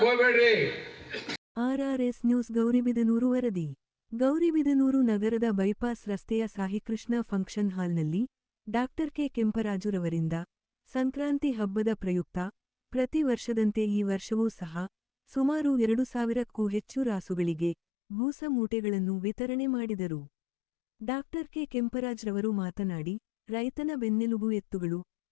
ಹೋಗ್ಬೇಡ್ರಿ. RRS ನ್ಯೂಸ್ ಗೌರಿಬಿದನೂರು ವರದಿ. ಗೌರಿಬಿದನೂರು ನಗರದ ಬೈಪಾಸ್ ರಸ್ತೆಯ ಸಾಯಿಕೃಷ್ಣ ಫಂಕ್ಷನ್ ಹಾಲ್ನಲ್ಲಿ ಡಾಕ್ಟರ್ ಕೆ ಕೆಂಪರಾಜುರವರಿಂದ ಸಂಕ್ರಾಂತಿ ಹಬ್ಬದ ಪ್ರಯುಕ್ತ ಪ್ರತಿ ವರ್ಷದಂತೆ ಈ ವರ್ಷವೂ ಸಹ ಸುಮಾರು 2000ಕ್ಕೂ ಹೆಚ್ಚು ರಾಸುಗಳಿಗೆ ಬೂಸ ಮೂಟೆಗಳನ್ನು ವಿತರಣೆ ಮಾಡಿದರು. ಡಾಕ್ಟರ್ ಕೆ ಕೆಂಪರಾಜ್ರವರು ಮಾತನಾಡಿ, ರೈತನ ಬೆನ್ನೆಲುಬು ಎತ್ತುಗಳು,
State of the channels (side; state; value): right; drops out; at 17.8 s